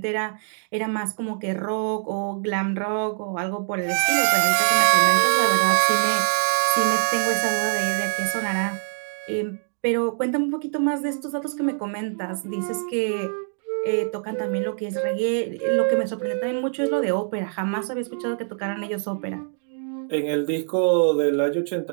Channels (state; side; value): silent; left; digital silence